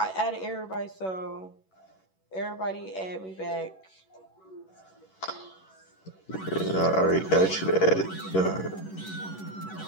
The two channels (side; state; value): right; late; 11 ms